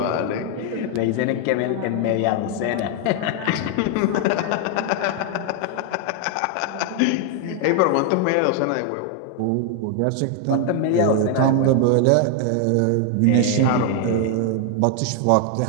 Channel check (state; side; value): different; both; correlation 0.00